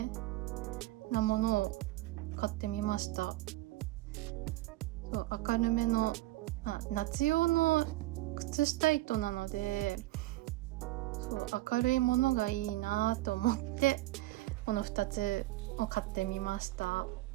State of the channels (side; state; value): left; quieter; 17.5 dB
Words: なものを買ってみました。そう、明るめの、夏用の靴下糸なので、そう明るいものがいいなと思ってこの2つを買ってみました。